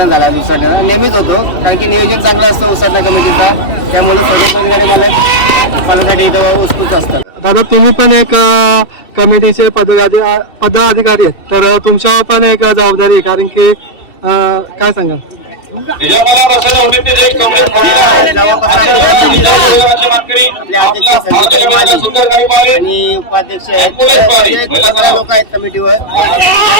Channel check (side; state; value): right; late; 2.7 ms